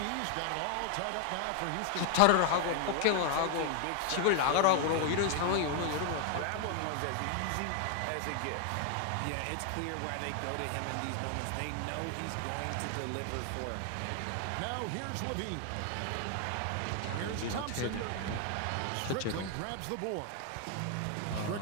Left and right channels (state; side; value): different; both; correlation 0.00